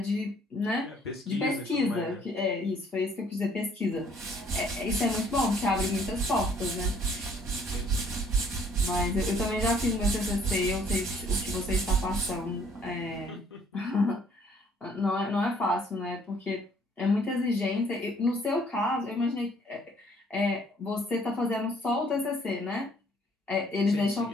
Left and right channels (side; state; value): both; normal; correlation 0.61